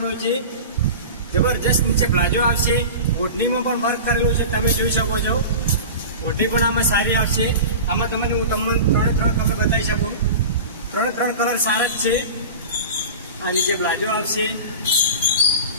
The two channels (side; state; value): both; inverted; correlation -0.32